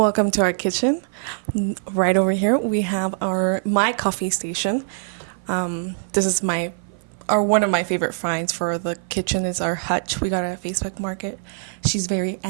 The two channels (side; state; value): left; silent; 55 dB below the other